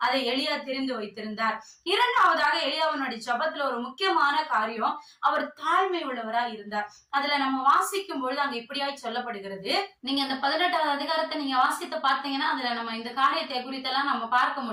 அதை எலியா தெரிந்து வைத்திருந்தார். இரண்டாவதாக எலியாவினுடைய ஜபத்துல ஒரு முக்கியமான காரியம், அவர் தாழ்மை உள்ளவரா இருந்தார். அதுல நம்ம வாசிக்கும் பொழுது அங்க இப்படியாய் சொல்லப்படுகிறது. நீங்க இந்த 18வது அதிகாரத்தை நீங்க வாசித்து பார்த்தீங்கன்னா அதுல நம்ம இந்த காரியத்தை குறித்தெல்லாம் நம்ம பார்க்க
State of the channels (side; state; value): both; identical; correlation 1.00